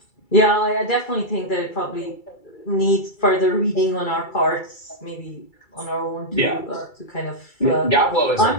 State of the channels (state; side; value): late; right; 2.3 ms